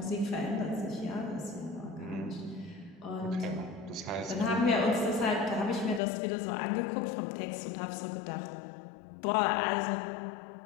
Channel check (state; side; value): drops out; right; at 6.0 s